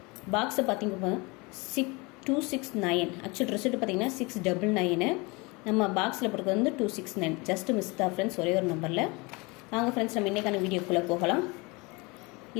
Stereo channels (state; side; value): quieter; right; 26.5 dB